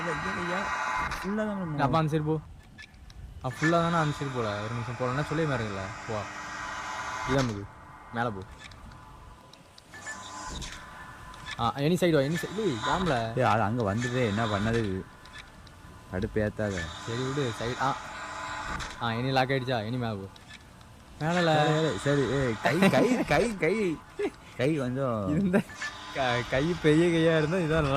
அப்போ அந்த சைடு போ. ஃபுல்லாக தானே அந்த சைடு போகல. ஒரு நிமிஷம் போகலன்னா சொல்லி மாறுங்கல்ல. போ இதான் நமக்கு மேலே போ. எனி சைடு ஏம்ல அது அங்கே வந்துட்டு என்ன பண்ணது அடுப்பு ஏற்றாத. சரி விடு. சைடு எனி லாக் ஆகிடுச்சா? எனி மேலே போ. மேலே சரி. கை கொஞ்சம் இருந்த கை பெரிய கையாக இருந்தால் இதுதான்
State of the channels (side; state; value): both; identical; correlation 1.00